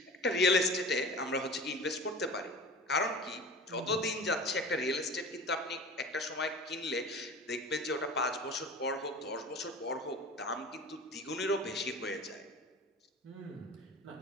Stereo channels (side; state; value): both; normal; correlation 0.37